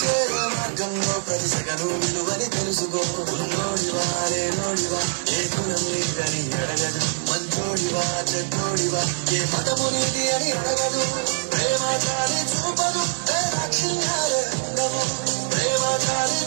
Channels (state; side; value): silent; left; digital silence